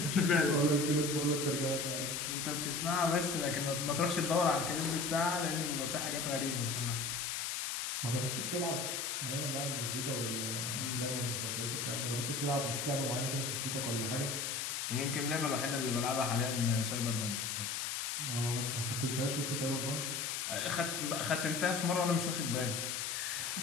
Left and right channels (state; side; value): noise; left; hiss, 2 dB below the sound